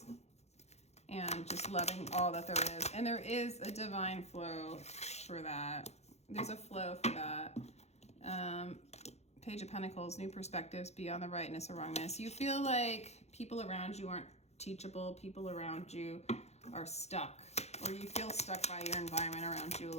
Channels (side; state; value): right; late; 0.31 ms